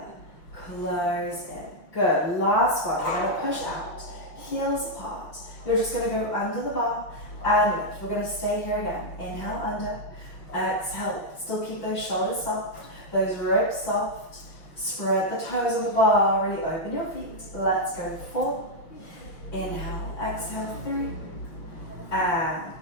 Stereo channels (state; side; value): late; right; 5.7 ms